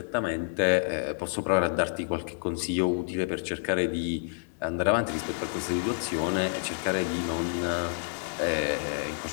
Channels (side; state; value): right; silent; digital silence